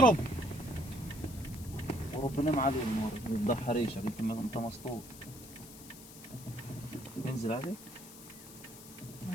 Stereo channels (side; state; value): left; noise; hiss, 16 dB below the sound